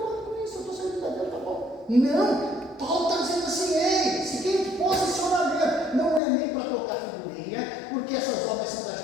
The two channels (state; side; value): drops out; right; at 6.2 s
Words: com isso, eu estou servindo a Deus, tá bom. Não, Paulo está dizendo assim, ei, seguinte posicionamento, não é nem para tocar figurinha, porque essas obras são das